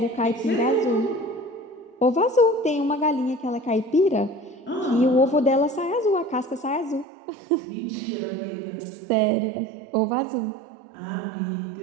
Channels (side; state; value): left; drops out; at 7.1 s